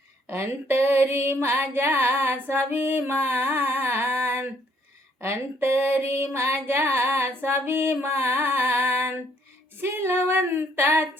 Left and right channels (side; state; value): both; normal; correlation 0.66